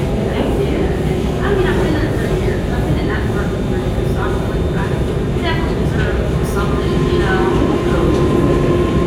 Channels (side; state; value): both; identical; correlation 1.00